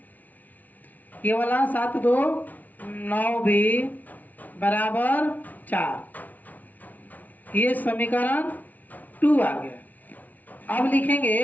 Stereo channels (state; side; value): late; right; 0.076 ms